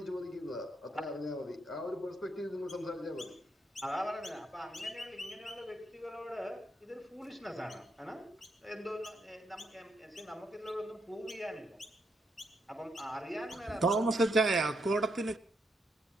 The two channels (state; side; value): normal; both; correlation 0.78